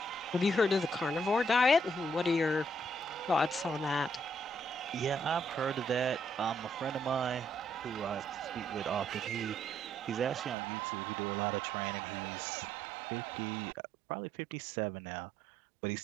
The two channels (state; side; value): drops out; left; at 10.6 s